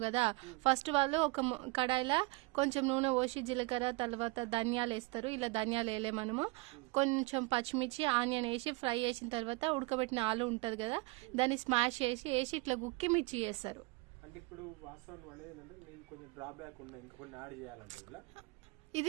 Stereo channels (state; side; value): quieter; left; 24.8 dB